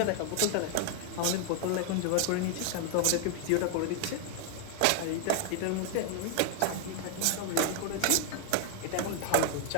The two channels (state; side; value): different; both; correlation 0.00